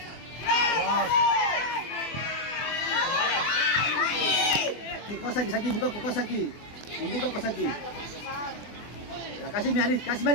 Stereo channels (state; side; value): late; right; 24 ms